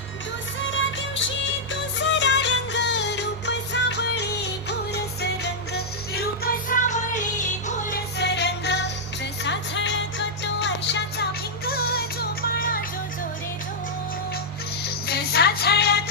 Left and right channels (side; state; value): both; normal; correlation -0.06